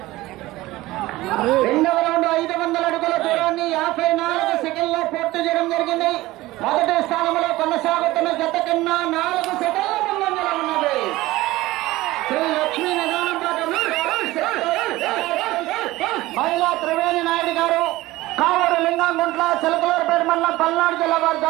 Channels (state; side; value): quieter; left; 18.2 dB